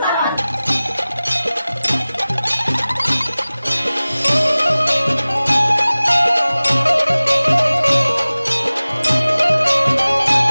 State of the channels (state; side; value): inverted; both; correlation -0.98